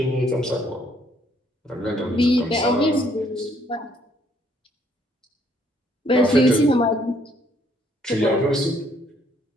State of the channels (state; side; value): normal; both; correlation 0.66